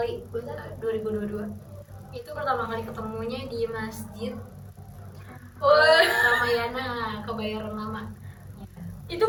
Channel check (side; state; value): both; identical; correlation 1.00